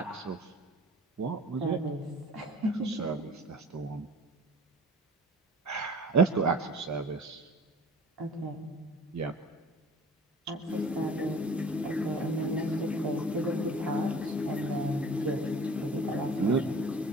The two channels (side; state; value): both; normal; correlation 0.45